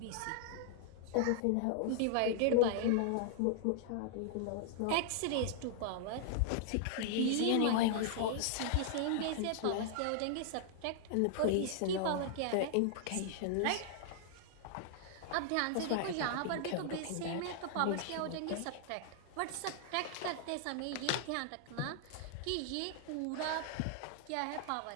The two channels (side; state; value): both; different; correlation -0.01